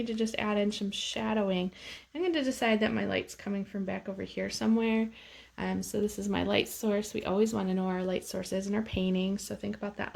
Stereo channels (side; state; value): both; identical; correlation 1.00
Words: to just add in some shadowing. I'm going to decide that my light's coming from back over here somewhere. So this is my light source. We always want to know our light source is in our painting, so think about that